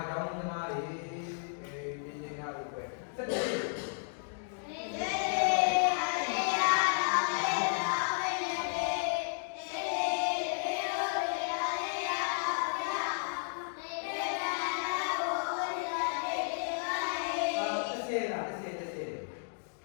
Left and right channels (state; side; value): silent; right; digital silence